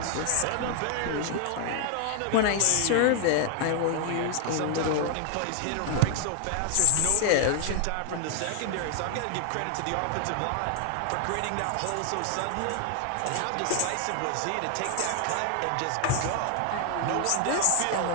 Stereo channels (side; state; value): both; different; correlation 0.00